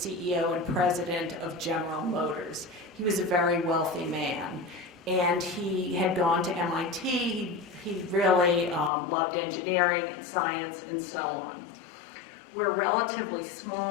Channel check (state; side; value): drops out; right; at 8.9 s